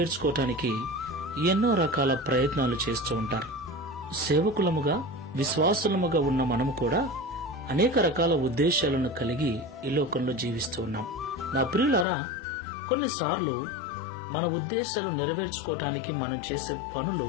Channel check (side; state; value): right; drops out; at 12.1 s